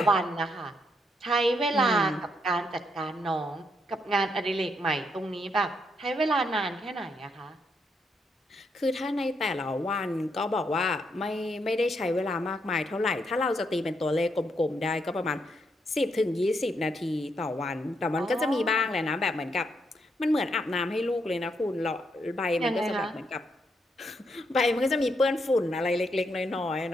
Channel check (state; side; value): normal; both; correlation 0.77